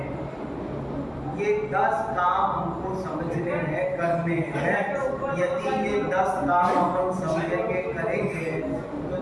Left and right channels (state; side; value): identical; both; correlation 1.00